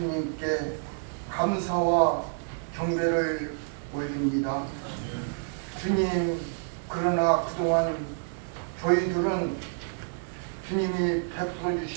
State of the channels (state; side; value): silent; left; digital silence